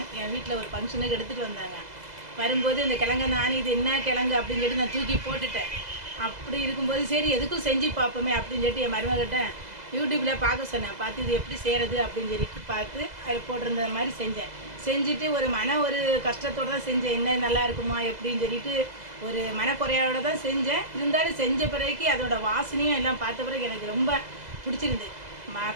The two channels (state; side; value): late; left; 2.0 ms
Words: என் வீட்டில் ஒரு ஃபங்க்ஷனுக்கு எடுத்துகிட்டு வந்தாங்க. வரும்போது இந்த கிழங்கை நான் இது என்ன கிழங்கு அப்படின்னு சொல்லிட்டு நான் தூக்கி போட்டுட்டேன். அப்படி இருக்கும்போது சரி எதுக்கும் செஞ்சு பார்ப்போமே அப்படின்னு சொல்லிட்டு என் மருமகிட்ட யூடியூப்பில் பார்க்க சொன்னேன். பார்த்து இது எப்படி செய்கிறது அப்படின்னு சொல்லிட்டு பார்த்து அது போட்டிருந்த மாதிரி செஞ்சுட்டு ஒரு கஷ்டத்தோடு தான் செஞ்சேன். என்ன நல்லா இருக்குமா எப்படின்னு சொல்லிட்டு ஒரு மனக்குறையோடு தான் செஞ்சேன். இருந்தாலும் செஞ்ச பிறகு அதோட வாசனையும் எல்லாம் பார்த்த பிறகு எனக்கு ரொம்ப பிடிச்சிருந்து.